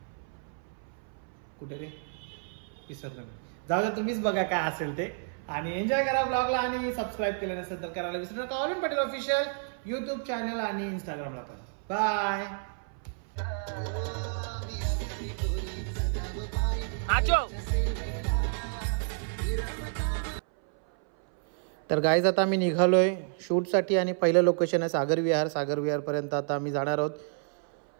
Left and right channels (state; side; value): silent; left; 58 dB below the other